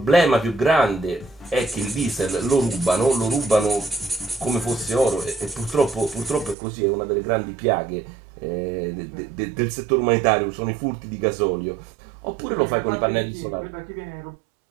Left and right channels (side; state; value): left; drops out; at 6.6 s